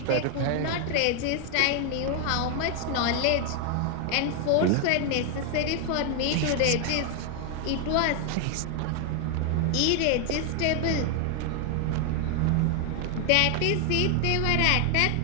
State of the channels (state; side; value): different; both; correlation 0.00